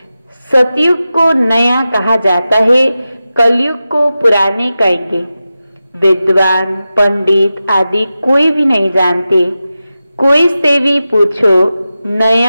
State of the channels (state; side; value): inverted; both; correlation -0.93